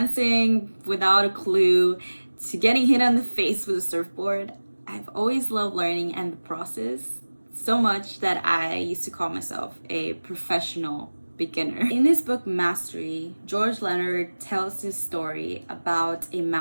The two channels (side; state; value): both; inverted; correlation -1.00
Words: without a clue to getting hit on the face with a surfboard, I've always loved learning and the process so much that I used to call myself a professional beginner. In his book Mastery, George Leonard tells his story about a